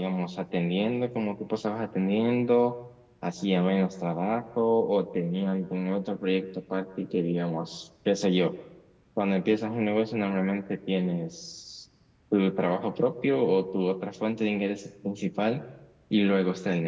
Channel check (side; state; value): both; identical; correlation 1.00